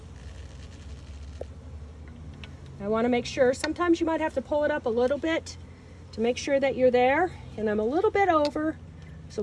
I want to make sure. Sometimes you might have to pull it up a little bit to make sure that you're there. And I'm a little bit over, so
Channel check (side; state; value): both; identical; correlation 1.00